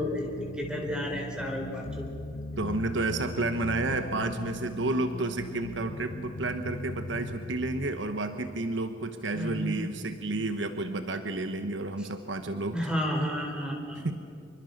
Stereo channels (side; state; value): both; normal; correlation 0.48